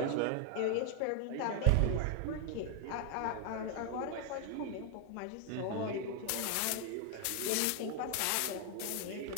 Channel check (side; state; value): both; different; correlation 0.00